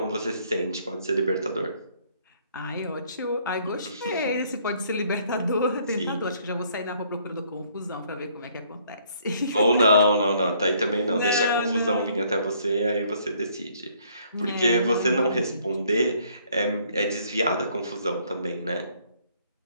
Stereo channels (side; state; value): both; inverted; correlation -0.64